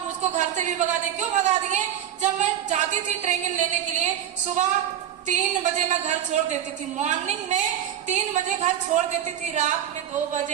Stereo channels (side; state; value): left; quieter; 10.4 dB